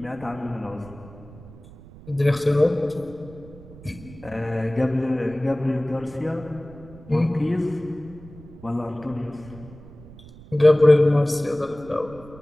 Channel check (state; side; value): noise; right; rumble, 19 dB below the sound